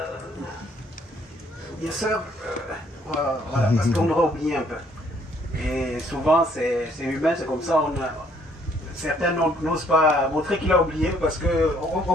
bien sûr, voilà, parce qu'on aura oublié un peu. Et souvent, c'est humain, c'est comme ça, certains n'osent pas montrer qu'il a oublié parce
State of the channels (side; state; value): both; normal; correlation 0.64